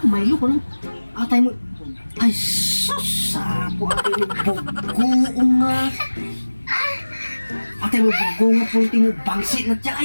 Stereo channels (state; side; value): inverted; both; correlation -1.00